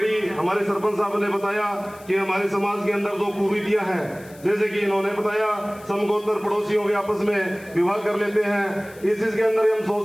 हमारे सरपंच साहब ने बताया कि हमारे समाज के अंदर जो कुरीतियां हैं, जैसे कि इन्होंने बताया समगोत्र पड़ोसियों के आपस में विवाह कर लेते हैं। इस चीज के अंदर हम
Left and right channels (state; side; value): noise; left; hiss, 23 dB below the sound